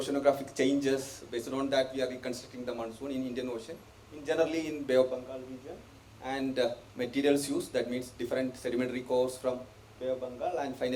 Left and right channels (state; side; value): identical; both; correlation 1.00